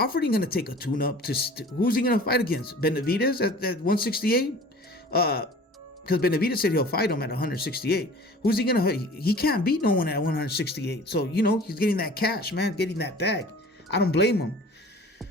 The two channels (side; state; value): both; normal; correlation 0.44